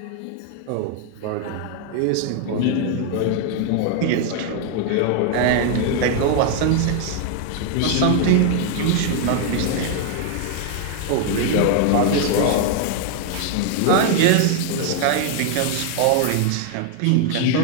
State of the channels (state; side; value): different; both; correlation 0.00